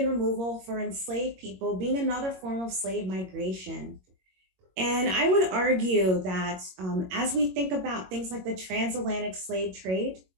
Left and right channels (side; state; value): left; late; 22 ms